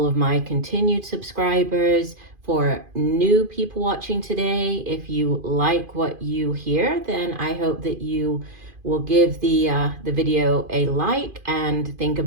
of my continued subscribers. For new people watching today, if you like what you hear, then I hope that you will give the video a like and think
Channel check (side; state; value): left; late; 2.5 ms